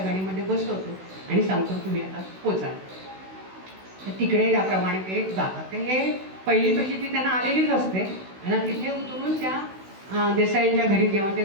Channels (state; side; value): late; left; 16 ms